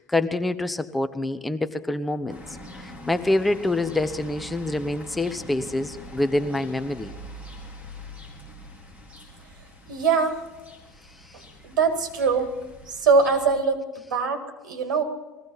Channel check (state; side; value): normal; both; correlation 0.48